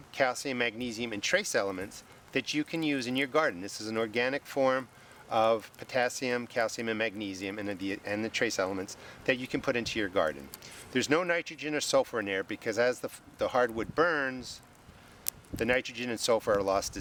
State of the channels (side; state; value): both; identical; correlation 1.00